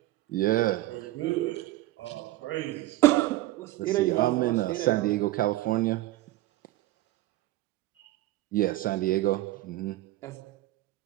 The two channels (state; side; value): quieter; left; 16.7 dB